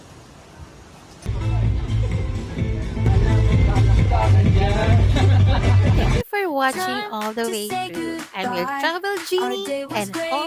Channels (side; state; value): both; identical; correlation 1.00